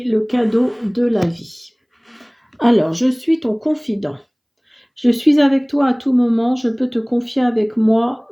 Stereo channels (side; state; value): both; identical; correlation 1.00